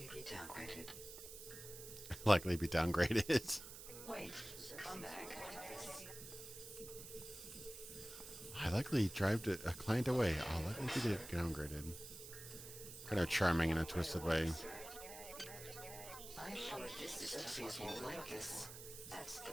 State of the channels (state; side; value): noise; right; hiss, 12 dB below the sound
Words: be downgraded. Likely be downgraded. Wait, come back. I likely drive a client away. I'll likely be downgraded. Kind of charming in a twisted way. I'm sure this system won't like this. That's the